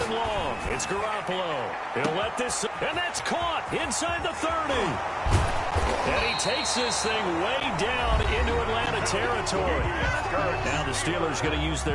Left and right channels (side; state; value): both; identical; correlation 1.00